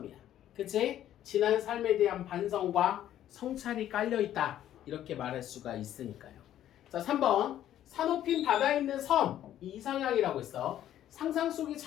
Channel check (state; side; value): quieter; right; 11.8 dB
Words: 그치? 지난 삶에 대한 반성과 성찰이 깔려있다. 이렇게 말할 수가 있으니까요. 자, 3번. 산호핀 바다에 있는 섬, 이 이상향이라고 있어. 상상 속의